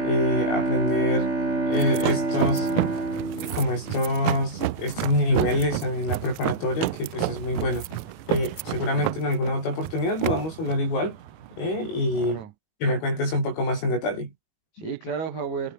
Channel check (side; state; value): right; late; 18 ms